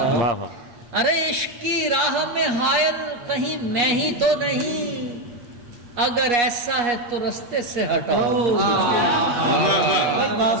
ارے عشق کی راہ میں حائل کہیں میں ہی تو نہیں. اگر ایسا ہے تو رستے سے ہٹاؤ.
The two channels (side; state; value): left; late; 8.4 ms